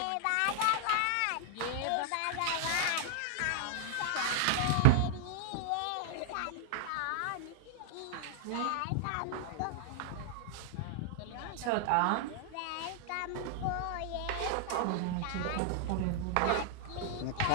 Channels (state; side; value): different; both; correlation 0.00